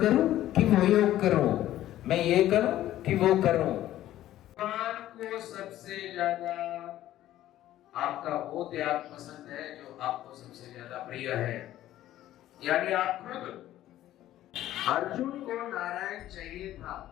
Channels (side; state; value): right; quieter; 13.5 dB